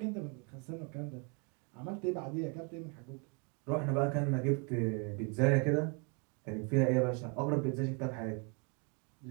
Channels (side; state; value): left; quieter; 35.3 dB